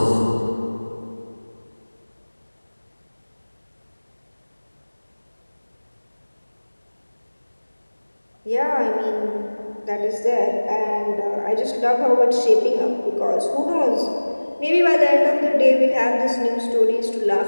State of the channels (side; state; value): both; inverted; correlation -1.00